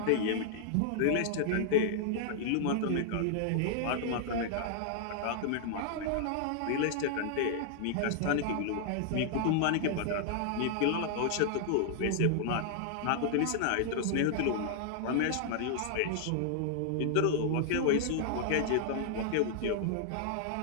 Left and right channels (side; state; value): both; different; correlation -0.01